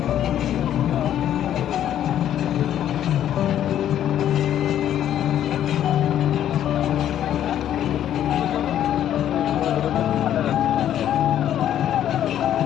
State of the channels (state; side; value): quieter; right; 10.9 dB